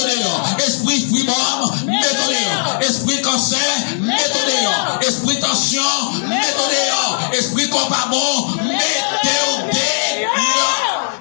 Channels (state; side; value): silent; right; digital silence